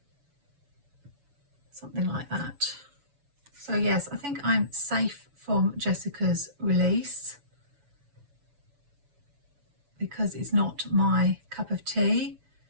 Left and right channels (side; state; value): left; late; 7.0 ms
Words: Something like that. So yes, I think I'm safe from Jessica's release because it's not my cup of tea.